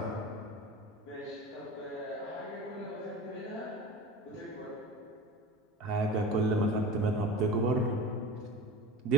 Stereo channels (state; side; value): normal; both; correlation 0.32